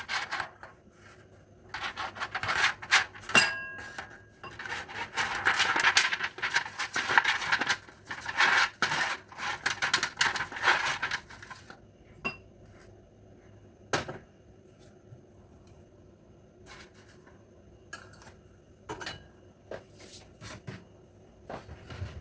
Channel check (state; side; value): identical; both; correlation 1.00